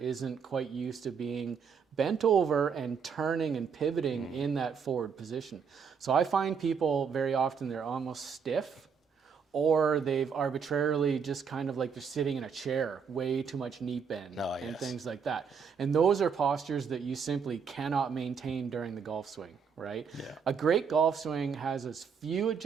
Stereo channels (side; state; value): left; quieter; 6.4 dB